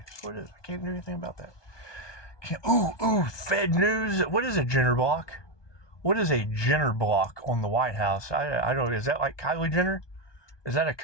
It's what it is. I can't do anything about that. Fed news. What is a Jenner block? What is a Jenner block on the White House? I don't know. Is that like Kylie Jenner? Is that a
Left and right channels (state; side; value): late; right; 1.2 ms